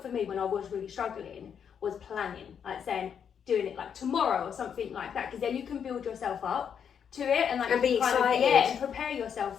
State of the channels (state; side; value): quieter; right; 7.7 dB